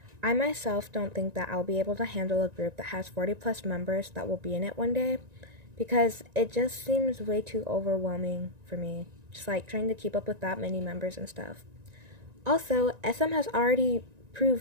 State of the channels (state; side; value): late; left; 1.9 ms